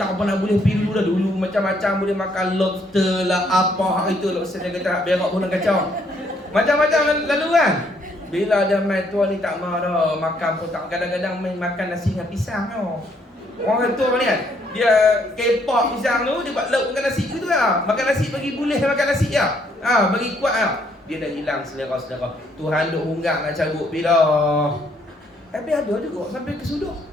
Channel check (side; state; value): both; normal; correlation 0.69